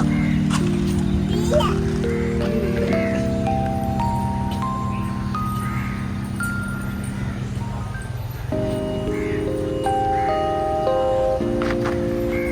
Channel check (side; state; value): both; identical; correlation 1.00